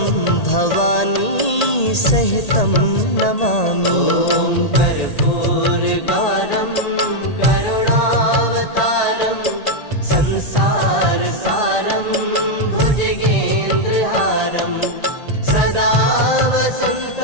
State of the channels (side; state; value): right; late; 1.8 ms